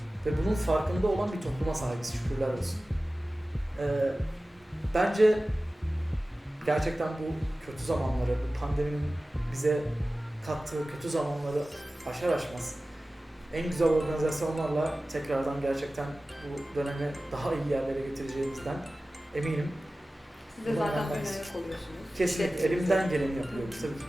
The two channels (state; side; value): normal; both; correlation 0.96